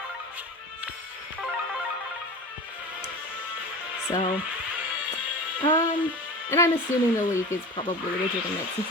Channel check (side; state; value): both; normal; correlation 0.33